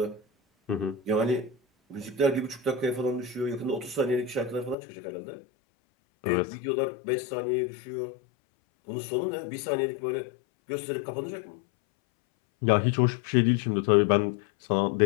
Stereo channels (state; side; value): drops out; right; at 4.8 s